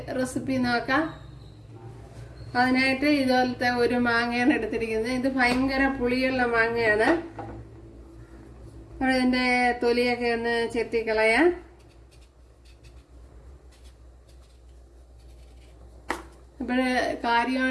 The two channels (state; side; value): identical; both; correlation 1.00